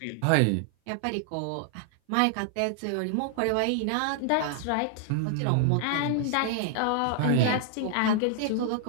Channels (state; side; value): different; both; correlation 0.00